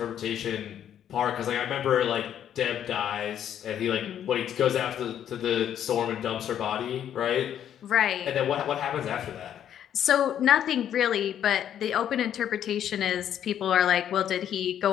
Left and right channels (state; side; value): quieter; right; 10.0 dB